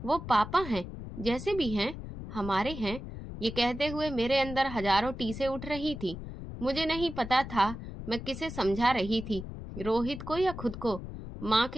वो पापा हैं, जैसे भी हैं हमारे हैं। ये कहते हुए मेरे अंदर हजारों टीसें उठ रही थी। मुझे नहीं पता था मैं किसे समझा रही थी, रोहित को या खुद को। माँ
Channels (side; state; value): left; noise; rumble, 10 dB below the sound